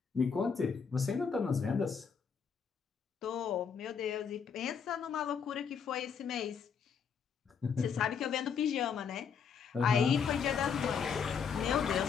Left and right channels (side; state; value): right; quieter; 6.6 dB